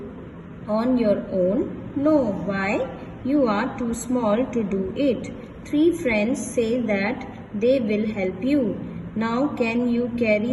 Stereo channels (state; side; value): identical; both; correlation 1.00